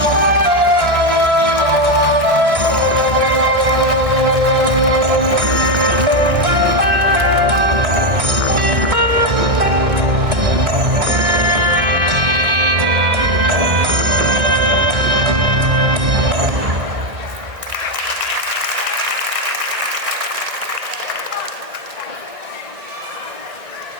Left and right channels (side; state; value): left; late; 1.7 ms